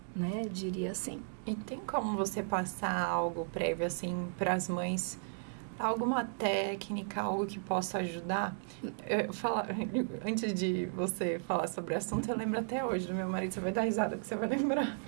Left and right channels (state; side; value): silent; left; digital silence